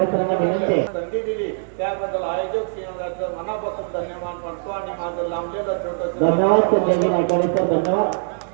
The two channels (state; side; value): silent; left; digital silence